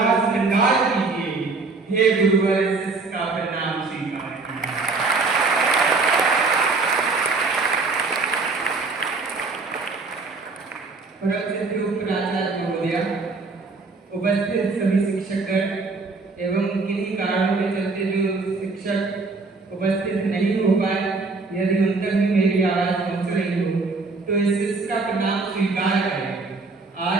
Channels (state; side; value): quieter; left; 3.9 dB